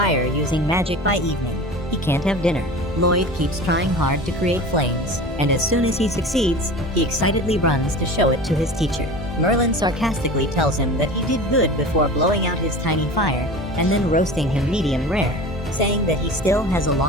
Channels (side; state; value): both; normal; correlation 0.35